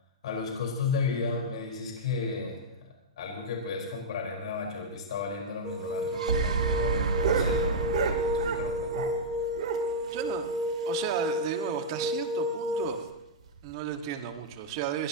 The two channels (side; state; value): both; normal; correlation -0.08